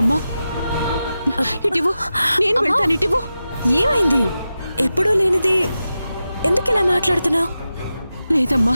ఇటివు, నేను వెళ్తాను. ఇటివు. ఏమైంది? ఎప్పుడూ లేనిది ఎందుకు ఇలా మాట్లాడుతున్నావు? లేదమ్మా,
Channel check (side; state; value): both; inverted; correlation -0.92